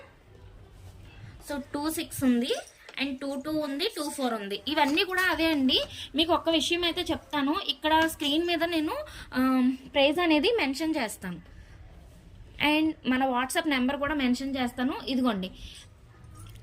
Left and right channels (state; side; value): identical; both; correlation 1.00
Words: సో 26 ఉంది, అండ్ 22 ఉంది, 24 ఉంది. ఇవన్నీ కూడా అవే అండి. మీకు ఒక్క విషయం అయితే చెప్తాను, ఇక్కడ స్క్రీన్ మీద నేను ప్రైస్ అనేది మెన్షన్ చేస్తాను, అండ్ మన వాట్సాప్ నెంబర్ కూడా మెన్షన్ చేస్తాను. ఇదిగోండి